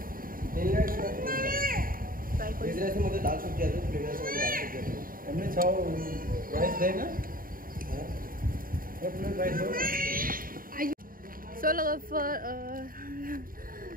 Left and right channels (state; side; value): late; left; 0.41 ms